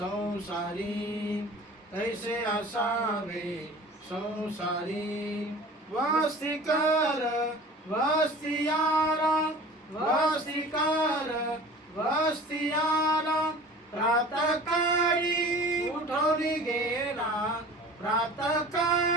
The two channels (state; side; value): normal; both; correlation 0.42